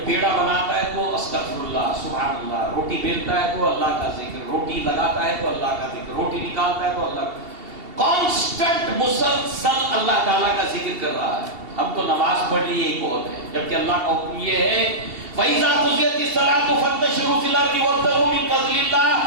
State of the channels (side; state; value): left; late; 2.7 ms